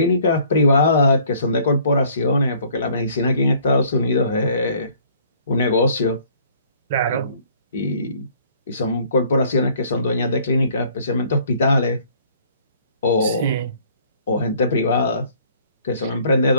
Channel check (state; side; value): inverted; both; correlation -0.58